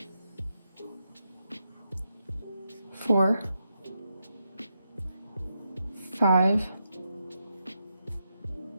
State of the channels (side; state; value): both; inverted; correlation -0.85